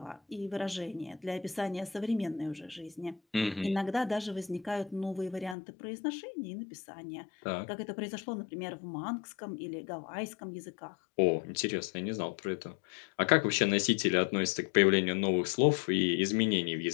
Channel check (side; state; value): right; drops out; at 5.6 s